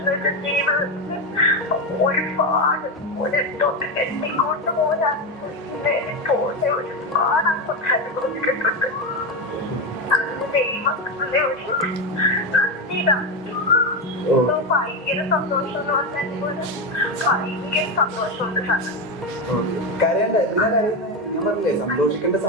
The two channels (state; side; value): normal; both; correlation 0.13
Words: ജീവിതത്തിൽ ഒരുപാട് എത്തിക്കൊണ്ട് പോരാ പോലെ ഒരുപാട് അനുഭവിച്ചിട്ടുണ്ട്. അതിന് ദൈവത്തിന്റെ ഒരു ഭയങ്കര സന്തോഷം എന്ന് പറഞ്ഞാൽ ഭയങ്കര സന്തോഷമുണ്ട് സാർ. കരയണ്ട, എന്തിനാ കരയുന്നത്? ഞാൻ പറഞ്ഞില്ലേ സന്തോഷിക്കേണ്ട